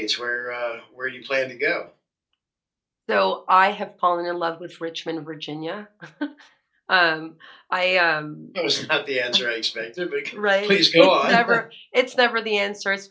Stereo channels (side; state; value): both; identical; correlation 1.00